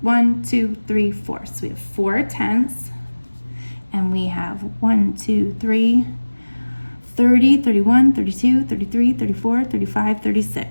1, 2, 3, 4. So we have 4 tenths. And we have 1, 2, 3, 30, 31, 32, 33, 34, 35,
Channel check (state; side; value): inverted; both; correlation -1.00